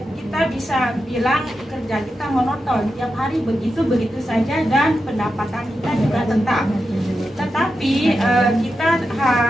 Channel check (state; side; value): normal; both; correlation 0.89